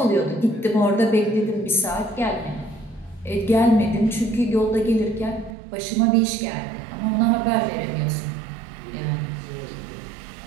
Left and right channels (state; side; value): drops out; left; at 5.6 s